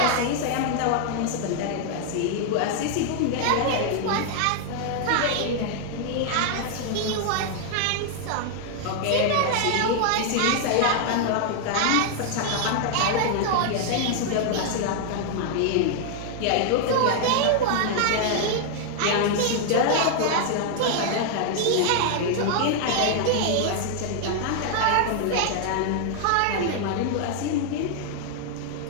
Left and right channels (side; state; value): both; different; correlation 0.00